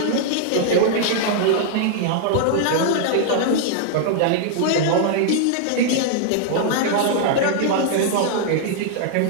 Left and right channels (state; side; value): different; both; correlation -0.01